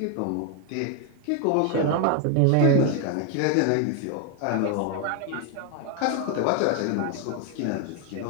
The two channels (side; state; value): both; different; correlation 0.01